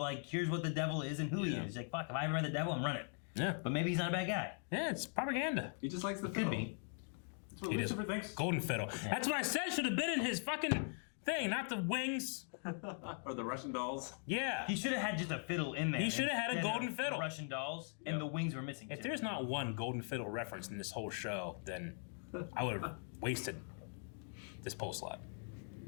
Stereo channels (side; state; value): right; silent; 51 dB below the other